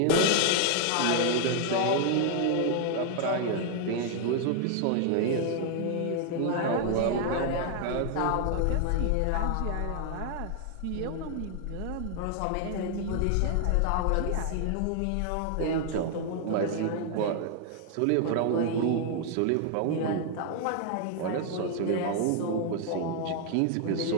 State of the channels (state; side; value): different; both; correlation 0.00